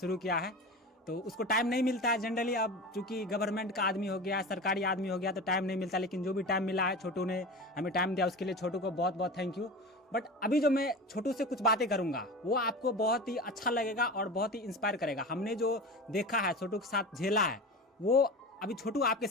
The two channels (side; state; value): both; normal; correlation 0.31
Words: किया है। तो उसको टाइम नहीं मिलता है जनरली, अब चूंकि गवर्नमेंट का आदमी हो गया, सरकारी आदमी हो गया, तो टाइम नहीं मिलता। लेकिन जो भी टाइम मिला है, छोटू ने हमें टाइम दिया, उसके लिए छोटू को बहुत बहुत थैंक यू। बट अभी जो मैं छोटू से कुछ बातें करूंगा वो आपको बहुत ही अच्छा लगेगा और बहुत ही इंस्पायर करेगा। हमने जो देखा है, छोटू के साथ झेला है, वो अभी छोटू आपके